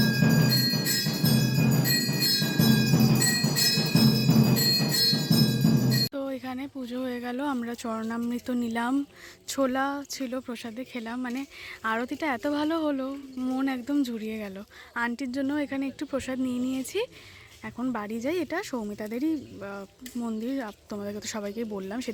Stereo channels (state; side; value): identical; both; correlation 1.00